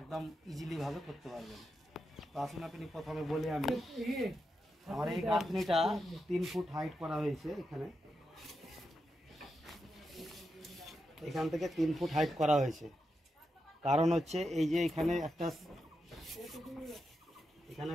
ইজিলিভাবে করতে পারবেন। তো আসুন আপনি প্রথমে বলি, আমি আমার এই গাঁথনিটা 3 ফুট হাইট করা হয়েছে। এখান থেকে 3 ফুট হাইট করা হয়েছে। কারণ হচ্ছে এই যে এখানে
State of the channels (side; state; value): both; normal; correlation 0.86